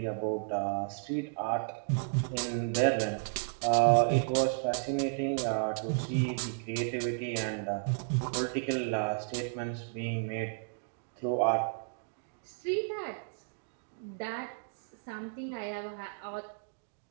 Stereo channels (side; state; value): left; silent; digital silence